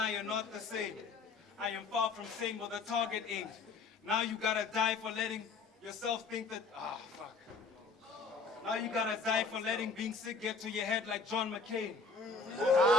are not the same. I am far from sane with a target aimed. Now you gotta die for letting yourself think that, fuck. Now you gotta die for letting being sick get to your head like John McCain. Too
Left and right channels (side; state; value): right; quieter; 4.4 dB